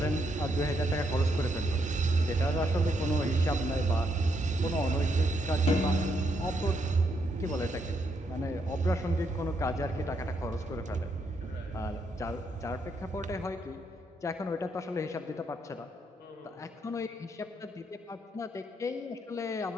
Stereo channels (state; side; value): normal; both; correlation 0.77